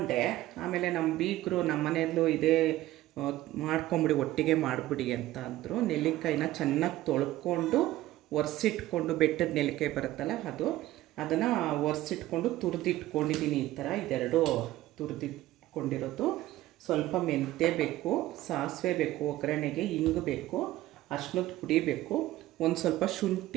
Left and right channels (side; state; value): left; quieter; 15.8 dB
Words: ಆಮೇಲೆ ನಮ್ಮ ಬೀಗರು ನಮ್ಮ ಮನೆಯಲ್ಲೂ ಇದೇ ಮಾಡ್ಕೊಂಬಿಡಿ, ಒಟ್ಟಿಗೆ ಮಾಡಿಬಿಡಿ ಅಂತ ಅಂದರು. ನೆಲ್ಲಿಕಾಯಿನ ಚೆನ್ನಾಗಿ ತೊಳ್ಕೊಂಡು ಒರೆಸಿಟ್ಕೊಂಡು, ಬೆಟ್ಟದ ನೆಲ್ಲಿಕಾಯಿ ಬರುತ್ತಲ್ಲ ಅದನ್ನು ಒರೆಸಿಟ್ಕೊಂಡು ತುರಿದಿಟ್ಕೊಂಡಿದ್ದೀನಿ. ಈ ಥರ ಇದೆರಡು ತುರಿದಿಟ್ಕೊಂಡಿರೋದು. ಸ್ವಲ್ಪ ಮೆಂತ್ಯ ಬೇಕು, ಸಾಸಿವೆ ಬೇಕು, ಒಗ್ಗರಣೆಗೆ ಹಿಂಗು ಬೇಕು, ಅರ್ಶಿನದ ಪುಡಿ ಬೇಕು, ಒಂದು ಸ್ವಲ್ಪ